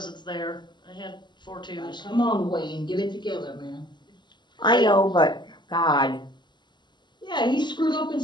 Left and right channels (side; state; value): right; late; 0.21 ms